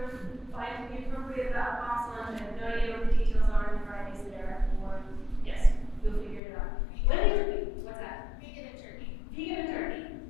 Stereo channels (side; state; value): right; drops out; at 6.4 s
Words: Find the appropriate box lunch. I have no idea what the details are in Fridays there. Or yes, you'll figure it out. What's that? Vegan and turkey. Vegan and turkey.